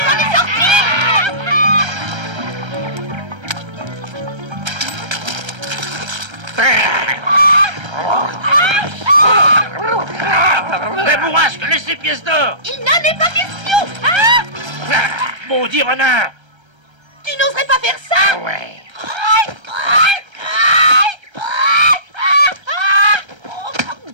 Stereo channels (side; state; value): left; late; 1.3 ms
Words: La bourrasque, laisse les pièces d'or. Il n'en est pas question. Ah, Maudit renard. tu n'oserais pas faire ça. Ouais.